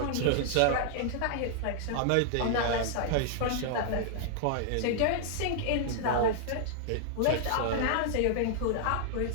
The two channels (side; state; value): both; different; correlation -0.01